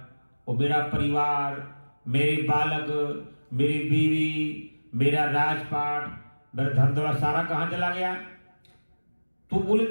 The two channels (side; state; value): both; inverted; correlation -1.00